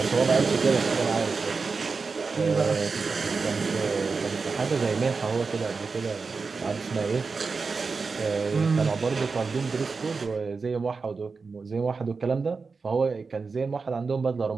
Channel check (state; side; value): quieter; left; 4.6 dB